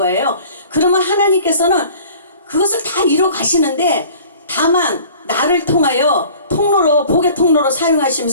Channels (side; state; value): both; inverted; correlation -0.47